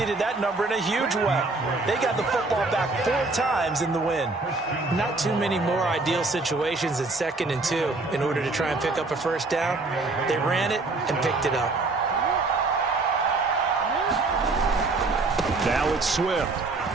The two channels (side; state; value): left; quieter; 3.4 dB